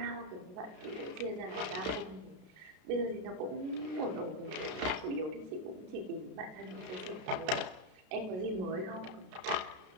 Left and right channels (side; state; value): left; late; 32 ms